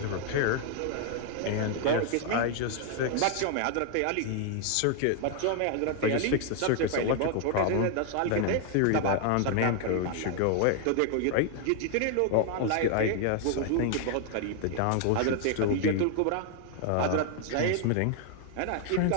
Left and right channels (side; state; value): both; different; correlation 0.00